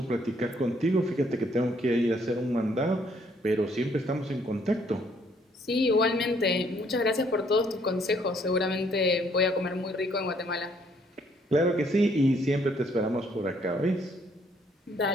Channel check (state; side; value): normal; both; correlation 0.66